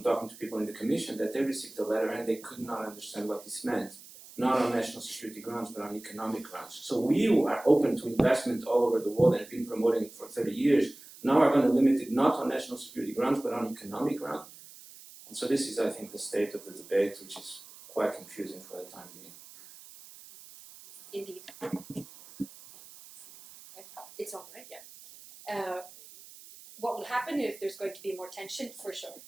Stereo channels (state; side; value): noise; right; hiss, 19 dB below the sound